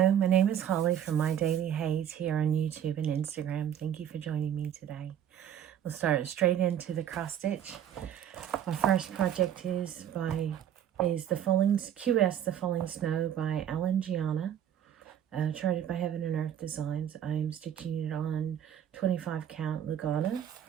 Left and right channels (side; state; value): left; quieter; 9.9 dB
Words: my name is Holly from My Daily HAED here on YouTube and Instagram. Thank you for joining me today. We'll start straight into the cross stitch. My first project is the Falling Snow by Alan Giana, charted by Heaven and Earth Designs. I'm stitching it on 25 count lugana,